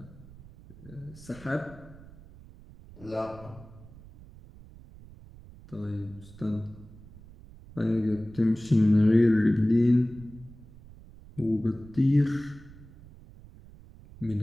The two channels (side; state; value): right; noise; rumble, 20 dB below the sound